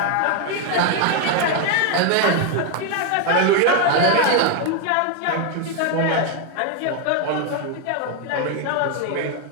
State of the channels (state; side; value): different; both; correlation 0.01